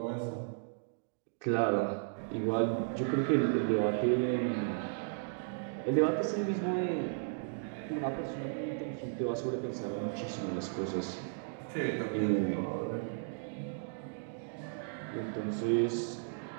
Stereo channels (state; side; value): silent; left; digital silence